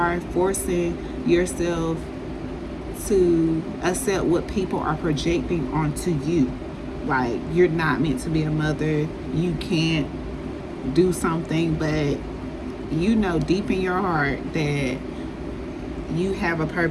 forcing yourself to accept what people are projecting onto you. Like, you're not meant to be a mother. You can't do something, but deep in your heart that you have a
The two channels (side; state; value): both; identical; correlation 1.00